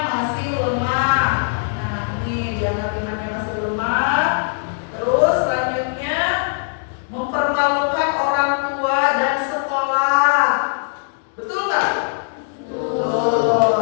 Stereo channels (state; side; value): silent; right; digital silence